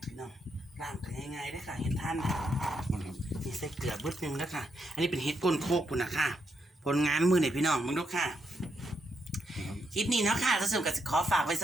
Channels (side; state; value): both; normal; correlation 0.79